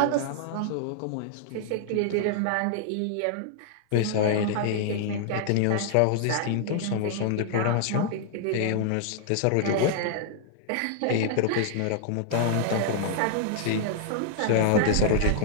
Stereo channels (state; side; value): different; both; correlation -0.01